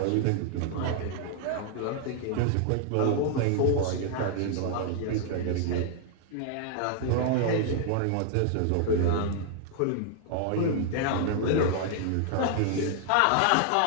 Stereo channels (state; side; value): different; both; correlation 0.00